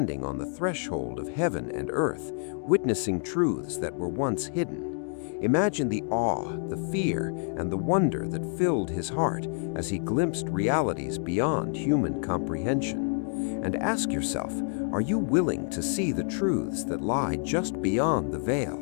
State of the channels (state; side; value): silent; right; 59 dB below the other